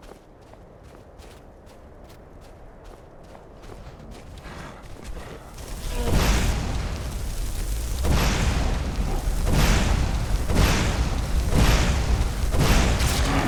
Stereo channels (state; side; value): identical; both; correlation 1.00